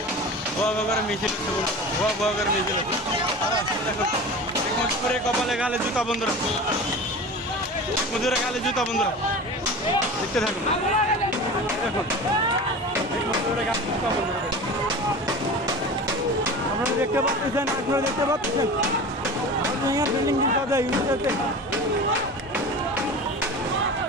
মিছিল হচ্ছে বন্ধুরা, মিছিল হচ্ছে দেখুন, মজুরে কপালে গালে জুতা বন্ধুরা, মজুরে গালে জুতা বন্ধুরা, দেখতে থাকুন। দেখুন আপনারা দেখতে পাচ্ছেন,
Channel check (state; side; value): normal; both; correlation 0.33